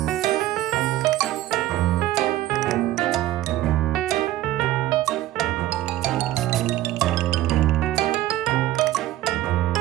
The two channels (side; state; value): left; quieter; 14.7 dB